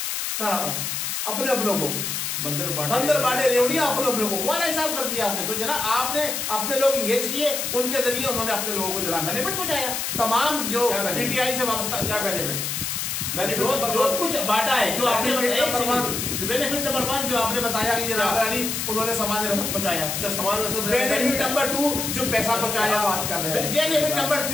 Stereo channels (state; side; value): noise; left; hiss, 2 dB below the sound